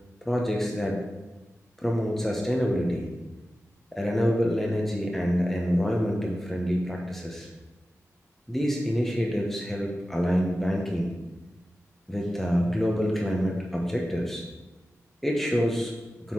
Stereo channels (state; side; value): normal; both; correlation 0.94